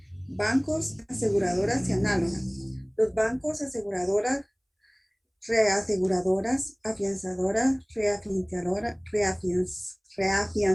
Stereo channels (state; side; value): identical; both; correlation 1.00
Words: Bancos, aseguradoras y análogas. Los bancos, aseguradoras, reaseguradoras, afianzadoras,